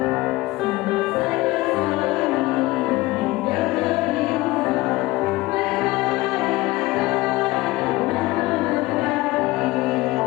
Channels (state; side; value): quieter; right; 20.1 dB